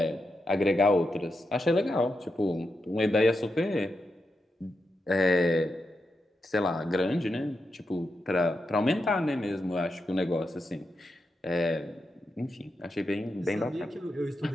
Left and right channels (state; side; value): normal; both; correlation 0.86